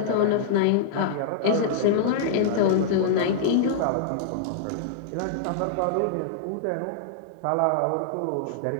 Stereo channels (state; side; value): different; both; correlation -0.01